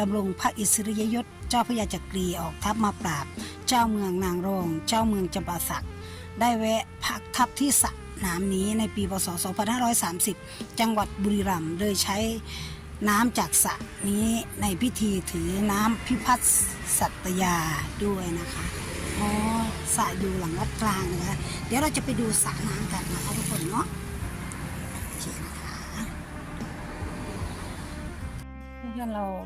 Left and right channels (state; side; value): identical; both; correlation 1.00